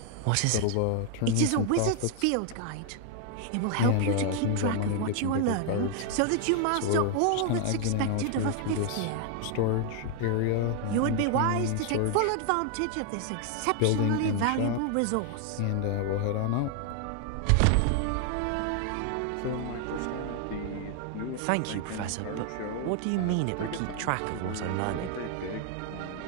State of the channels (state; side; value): different; both; correlation 0.00